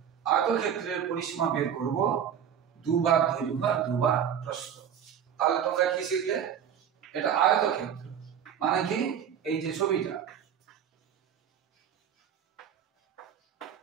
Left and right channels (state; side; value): quieter; left; 8.6 dB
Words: আয়তক্ষেত্রের পরিসীমা বের করব, দুবার দৈর্ঘ্য আর দুবার প্রস্থ। তাহলে তোমরা কি শিখলে? এটা আয়তক্ষেত্র মানে কি? এই যে ছবিটা,